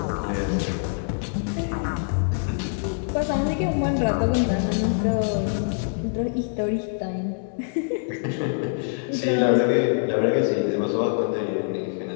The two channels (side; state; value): right; silent; digital silence